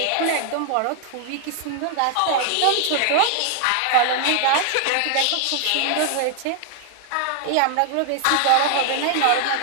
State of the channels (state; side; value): different; both; correlation 0.00